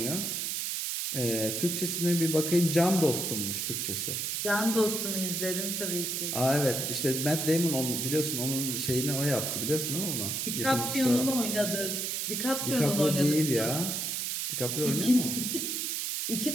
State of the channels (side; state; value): right; noise; hiss, 1 dB below the sound